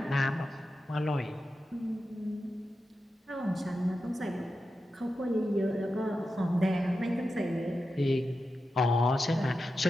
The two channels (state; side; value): normal; both; correlation 0.91